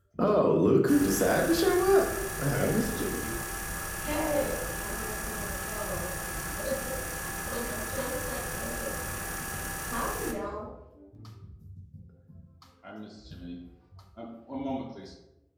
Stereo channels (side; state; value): both; identical; correlation 1.00